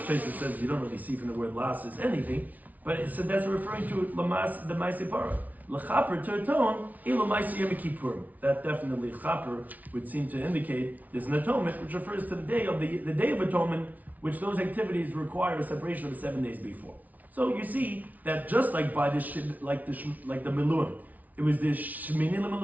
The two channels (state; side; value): late; left; 0.075 ms